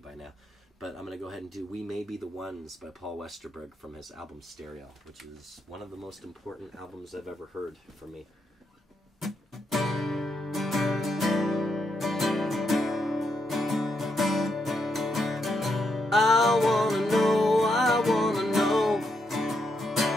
now. But I'm going to go ahead and do We May Be the Ones by Paul Westerberg from his album Stereo, which is one of the most important albums I've ever heard for me. I wanna know, I wanna know,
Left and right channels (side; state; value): both; normal; correlation 0.80